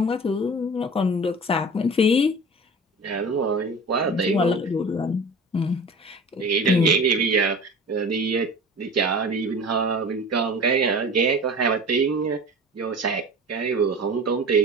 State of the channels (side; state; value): both; normal; correlation 0.37